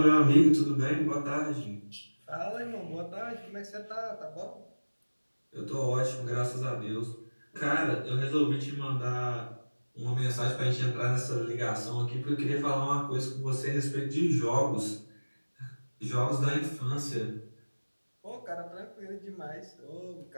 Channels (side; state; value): both; inverted; correlation -1.00